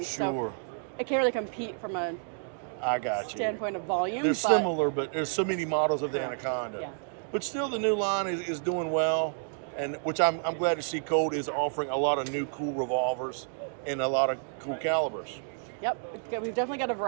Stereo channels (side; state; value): left; silent; digital silence